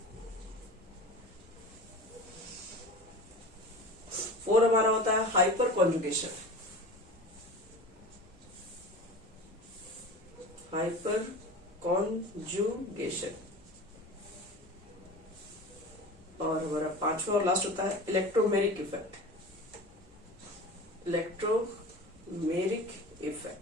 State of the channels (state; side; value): normal; both; correlation 0.34